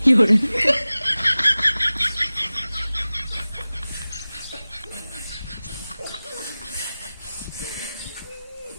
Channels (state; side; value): inverted; both; correlation -0.97